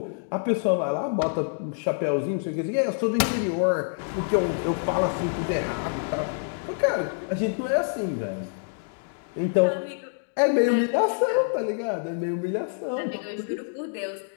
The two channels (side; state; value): right; silent; digital silence